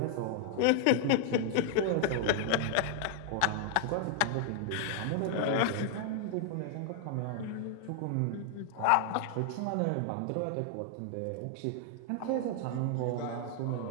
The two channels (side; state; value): both; different; correlation 0.00